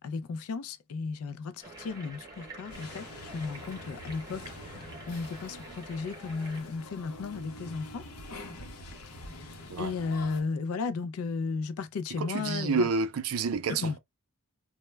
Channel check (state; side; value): normal; both; correlation 0.40